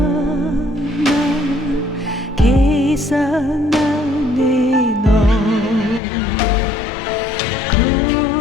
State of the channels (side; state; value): right; drops out; at 6.0 s